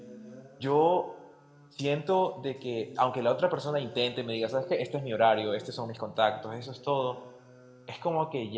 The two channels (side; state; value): both; identical; correlation 1.00